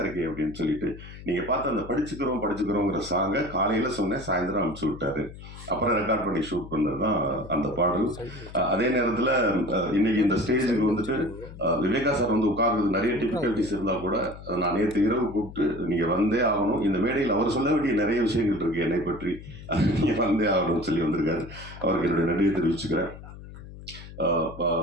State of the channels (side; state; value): left; noise; hum, 15 dB below the sound